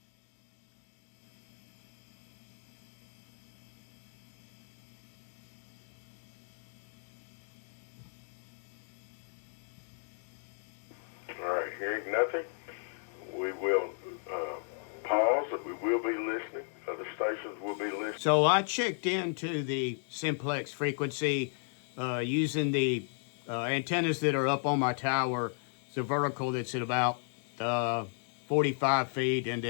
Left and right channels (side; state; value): right; silent; 55 dB below the other